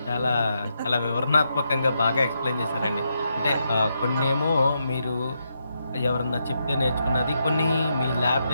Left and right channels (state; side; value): inverted; both; correlation -0.82